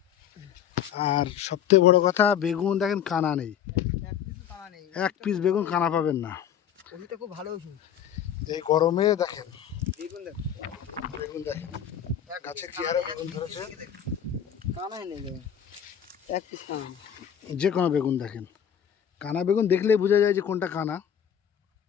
আর সবথেকে বড় কথা, বেগুন দেখেন কানা নেই, এক পিস বেগুন কানা পাবেন না। খুব ভালো। এই গরমে দেখেন বেগুন দেখেন গাছে কি হারে বেগুন ধরেছে। কানাই নেই, এক পিস কানা। যে কোনো বেগুন দেখেন, কানা বেগুন দেখলেই বোঝা যায় যে কোনটা কানা।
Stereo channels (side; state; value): right; quieter; 9.1 dB